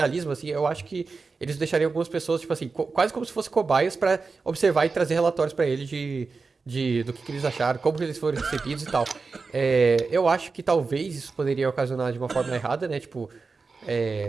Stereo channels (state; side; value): quieter; left; 4.4 dB